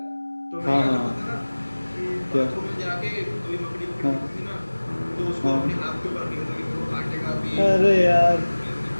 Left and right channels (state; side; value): inverted; both; correlation -1.00